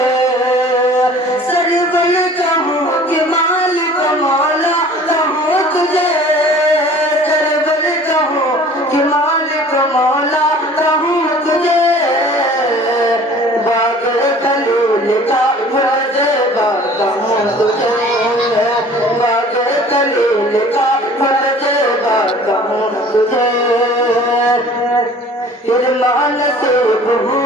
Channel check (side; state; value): both; normal; correlation 0.48